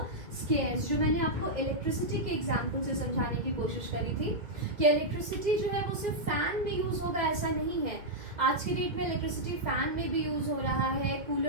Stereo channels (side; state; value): left; late; 2.1 ms